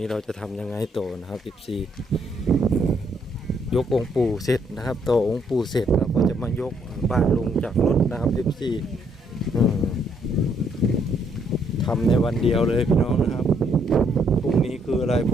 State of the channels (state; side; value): normal; both; correlation 0.71